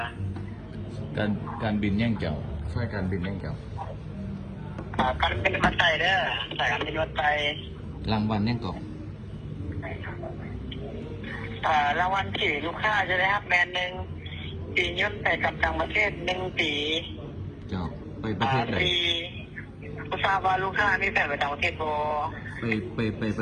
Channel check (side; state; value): both; identical; correlation 1.00